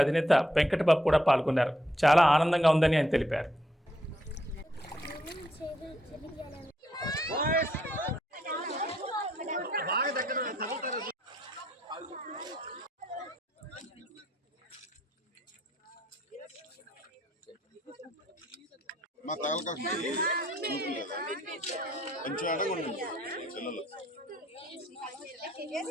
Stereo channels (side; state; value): both; normal; correlation 0.73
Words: అధినేత వెంకటబాబు కూడా పాల్గొన్నారు. చాలా ఆనందంగా ఉందని ఆయన తెలిపారు. మా తాలూకా కొంచెం అడగండి పిల్లలు